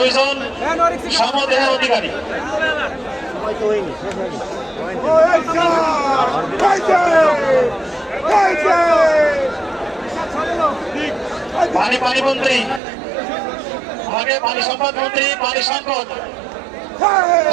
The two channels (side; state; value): left; drops out; at 12.8 s